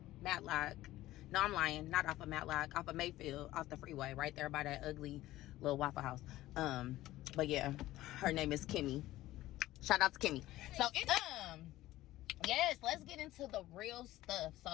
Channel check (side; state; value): right; quieter; 15.9 dB